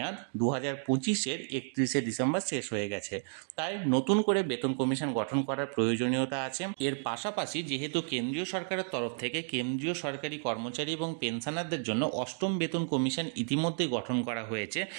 2025-এর 31শে ডিসেম্বর শেষ হয়ে গেছে। তাই নতুন করে বেতন কমিশন গঠন করার প্রয়োজনীয়তা আছে। এর পাশাপাশি যেহেতু কেন্দ্রীয় সরকারের তরফ থেকে কেন্দ্রীয় সরকারি কর্মচারী এবং পেনশনারদের জন্য অষ্টম বেতন কমিশন ইতিমধ্যে গঠন করা হয়েছে,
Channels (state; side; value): silent; left; 56 dB below the other